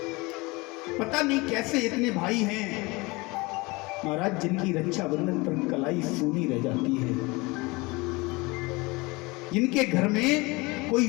पता नहीं कैसे इतने भाई हैं महाराज जिनकी रक्षाबंधन पर कलाई सूनी रह जाती है, जिनके घर में कोई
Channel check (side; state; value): right; quieter; 24.5 dB